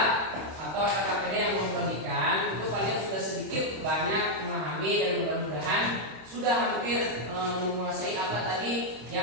atau KKPD yang memperhatikan, itu kalian sudah sedikit banyak memahami dan mudah-mudahan sudah hampir menguasai apa tadi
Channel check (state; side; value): late; left; 26 ms